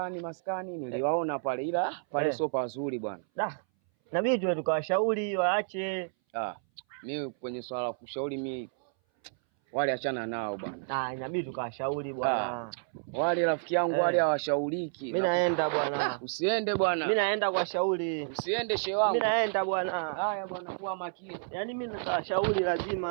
niliwaona pale ila pale sio pazuri bwana. Nabidi tuwe tukawashauri waache. Mimi kwenye swala la kushauri mimi wale achana nao bwana. Inabidi tukawashauri bwana. Wale rafiki yangu wale hawashauriki. Mimi naenda bwana. Usiende bwana. Mimi naenda kuwashauri. Usiende shehe wangu. Mimi naenda bwana. Haya bwana, kuwa makini. Yaani mimi natawashauri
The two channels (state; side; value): silent; left; 58 dB below the other